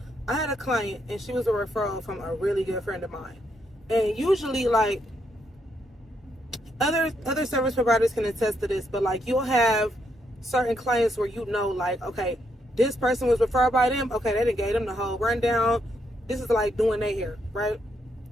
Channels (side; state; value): both; normal; correlation 0.77